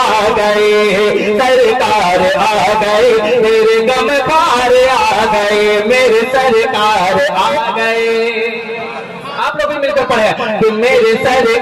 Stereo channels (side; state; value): both; identical; correlation 1.00